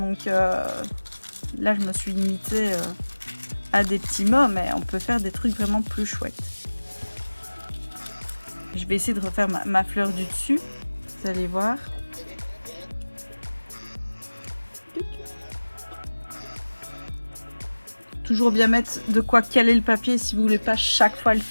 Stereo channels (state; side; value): inverted; both; correlation -1.00